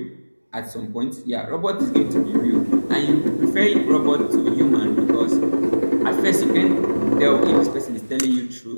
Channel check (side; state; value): both; inverted; correlation -1.00